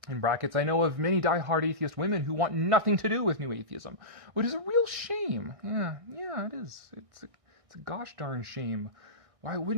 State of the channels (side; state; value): left; late; 1.6 ms